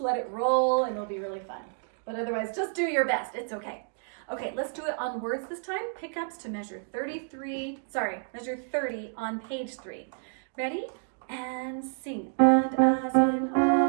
let it roll and it'll be really fun. But otherwise, just do your best. It's okay. Okay, let's do it on words this time. Pickups to measure 30 on page 3. Ready? And sing. And as in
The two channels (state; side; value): silent; left; 58 dB below the other